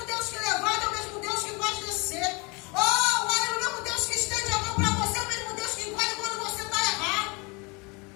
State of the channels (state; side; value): quieter; right; 28.6 dB